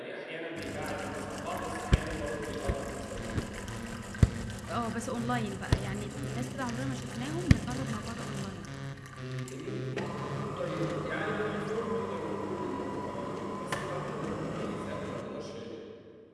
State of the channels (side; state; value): both; identical; correlation 1.00